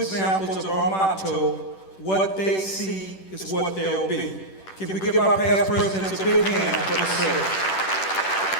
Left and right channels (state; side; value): late; right; 10 ms